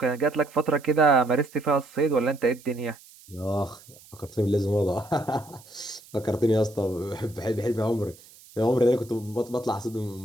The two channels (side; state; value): right; noise; hiss, 23 dB below the sound